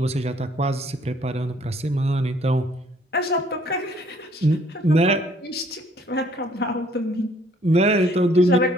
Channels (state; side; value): normal; both; correlation 0.61